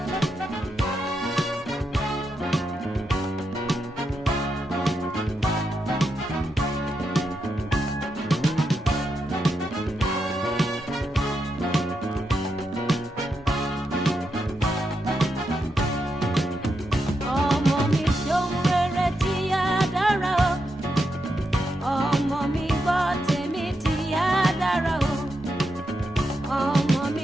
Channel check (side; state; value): both; normal; correlation 0.84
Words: Ọmọ mi ṣohun rere tí á dára o. Ọmọ mi gbọ́ tèmi tí á dára o. Ọmọ